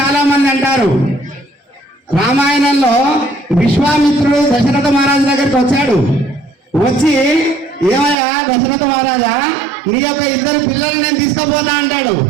చాలా మంది అంటారు. రామాయణంలో విశ్వామిత్రుడు దశరథ మహారాజు దగ్గరికి వచ్చాడు. వచ్చి ఏమయ్యా దశరథ మహారాజా, నీ యొక్క 2 పిల్లలు నేను తీసుకుపోతా అంటాడు.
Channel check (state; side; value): drops out; left; at 8.2 s